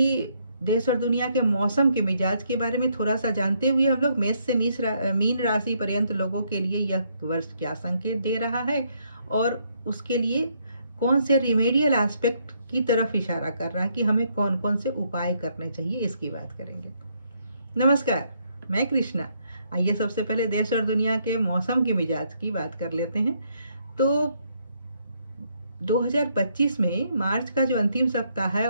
देश और दुनिया के मौसम के मिजाज के बारे में थोड़ा सा जानते हुए हम लोग मेष से मीन राशि पर्यंत लोगों के लिए यह वर्ष क्या संकेत दे रहा है और उसके लिए कौन से रिमेडियल एस्पेक्ट की तरफ इशारा कर रहा है कि हमें कौन कौन से उपाय करने चाहिए, इसकी बात करेंगे। नमस्कार, मैं कृष्णा। आइए सबसे पहले देश और दुनिया के मौसम के मिजाज की बात कर लेते हैं। तो 2025 में मार्च का जो अंतिम सप्ताह है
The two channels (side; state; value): both; inverted; correlation -0.72